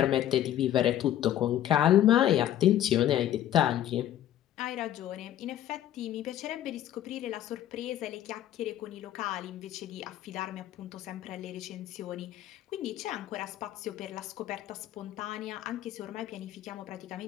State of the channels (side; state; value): right; quieter; 12.1 dB